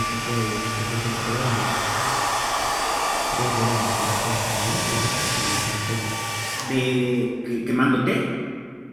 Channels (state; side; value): identical; both; correlation 1.00